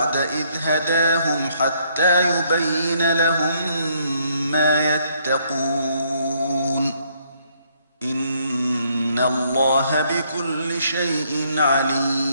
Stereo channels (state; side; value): inverted; both; correlation -0.69